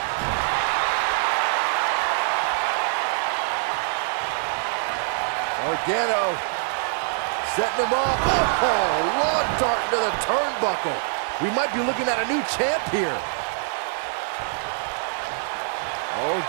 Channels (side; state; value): left; silent; 62 dB below the other